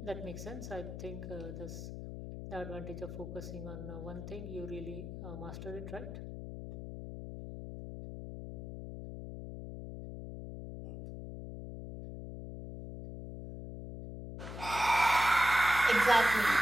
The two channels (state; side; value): noise; left; hum, 9 dB below the sound